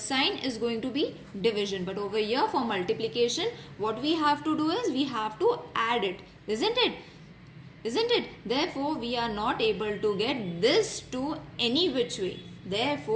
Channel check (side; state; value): both; identical; correlation 1.00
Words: is going to be division. But over here for multiplication, what we have to do is we have to add it. Isn't it? Isn't it? Therefore, we are not able to get this to any which way.